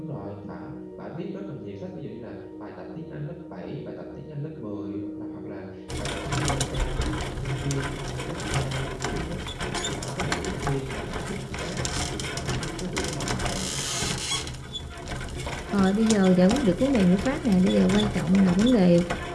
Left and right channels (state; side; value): identical; both; correlation 1.00